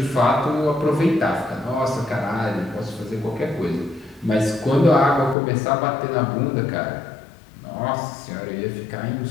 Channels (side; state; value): right; drops out; at 5.4 s